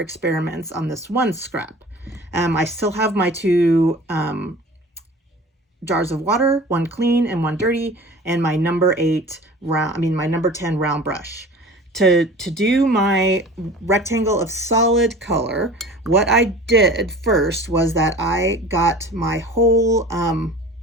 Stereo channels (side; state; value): both; normal; correlation 0.41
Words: on this one scrap. I still have my 2 jars of water, one clean and one dirty, and my number 10 round brush. To do my rectangle of solid color, what I did first was that I got my whole